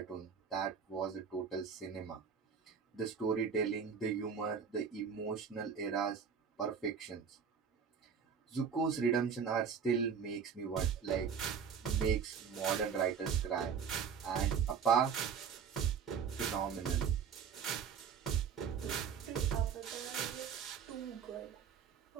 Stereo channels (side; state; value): left; quieter; 6.8 dB